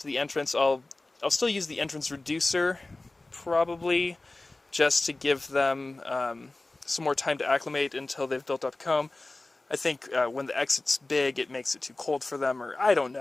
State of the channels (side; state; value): right; quieter; 3.0 dB